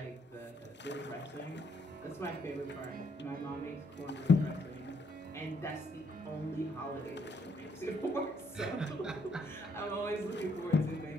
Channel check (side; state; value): both; normal; correlation 0.71